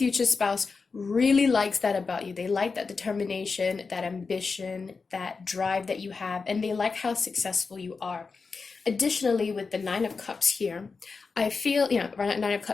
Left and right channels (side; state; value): right; quieter; 4.6 dB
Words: spouse really likes that about you. They like that determination, that ambition, that drive that you have, and they like how successful you are. Additionally, with the 9 of Cups here, I feel, 9 of